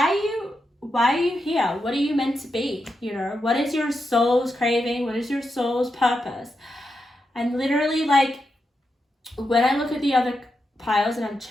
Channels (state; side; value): normal; both; correlation 0.86